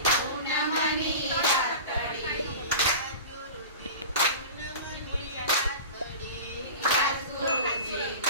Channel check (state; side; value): inverted; both; correlation -0.33